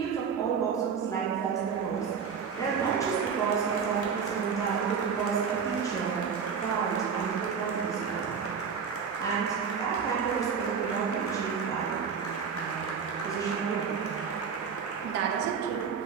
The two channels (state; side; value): quieter; left; 6.4 dB